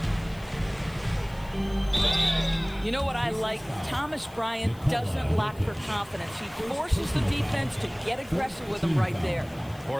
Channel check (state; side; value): noise; left; hiss, 24 dB below the sound